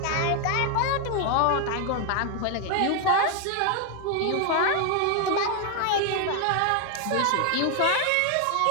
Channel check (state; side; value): different; both; correlation 0.00